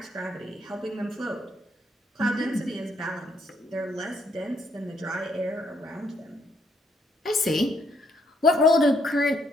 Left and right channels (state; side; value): normal; both; correlation 0.72